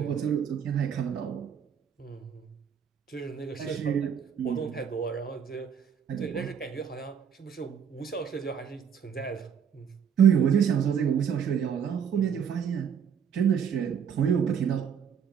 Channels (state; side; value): quieter; left; 7.7 dB